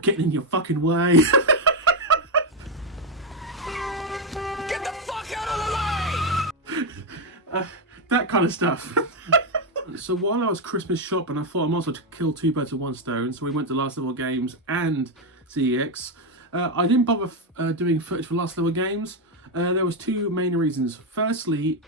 in your fucking way. Get the fuck out of the way! That kind of stuff. So while I was Christmas shopping, I thought I might as well kill two birds with one stone. So we went to Last Level Games and CEX. I didn't bother doing footage for Last Level Games. There was two main reasons. Firstly,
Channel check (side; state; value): both; normal; correlation 0.06